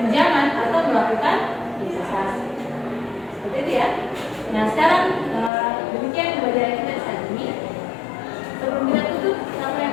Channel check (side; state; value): right; drops out; at 5.5 s